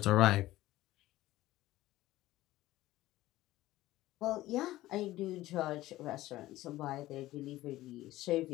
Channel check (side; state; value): right; quieter; 16.3 dB